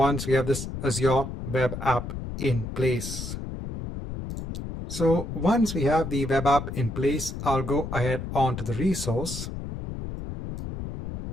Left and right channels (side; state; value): left; noise; rumble, 7 dB below the sound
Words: we have this Azure web app in place. So once we have the web app in place, I'll go ahead onto the resource.